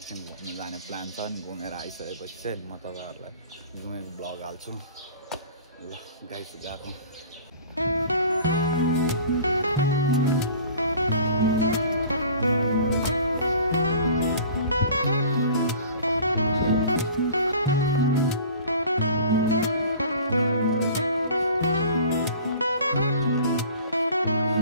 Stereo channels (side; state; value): both; inverted; correlation -0.45